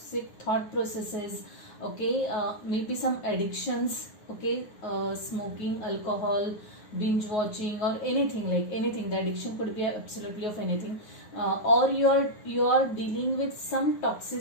thought processes. Okay, maybe some addictions. Okay, smoking, alcohol, binge watching, or anything, like anything. The addiction could be absolutely of anything, or you're dealing with some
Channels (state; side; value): late; right; 9.5 ms